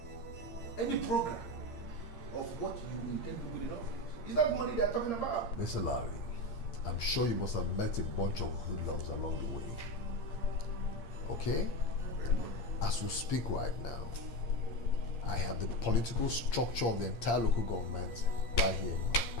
any program of what you intend to do in office. Is that money they are talking about? Mr. Larry, I'm sure you must have met a bunch of hoodlums along the way. Okay? As we speak right now, I have the political structure of the entire local government right here in my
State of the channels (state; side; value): late; right; 8.7 ms